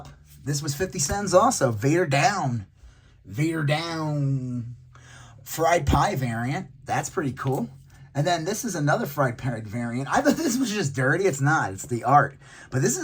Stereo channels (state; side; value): identical; both; correlation 1.00